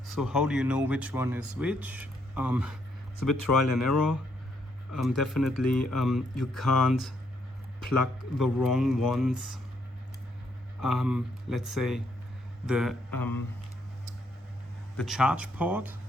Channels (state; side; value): normal; both; correlation 0.73